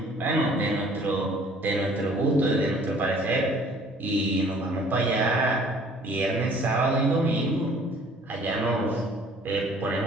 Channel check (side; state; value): both; normal; correlation 0.54